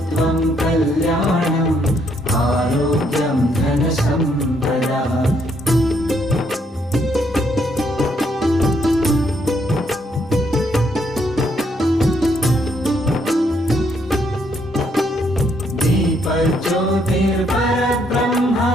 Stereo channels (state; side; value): normal; both; correlation 0.72